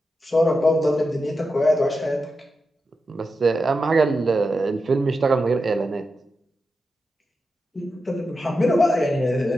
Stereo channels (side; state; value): both; normal; correlation 0.89